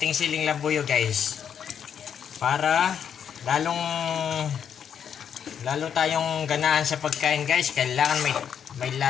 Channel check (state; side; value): quieter; right; 8.2 dB